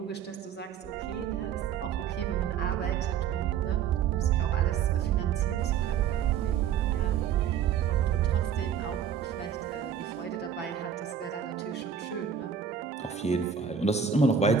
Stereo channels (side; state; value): left; quieter; 7.8 dB